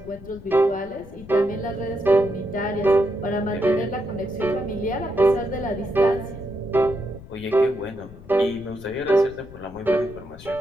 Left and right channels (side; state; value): left; noise; rumble, 18 dB below the sound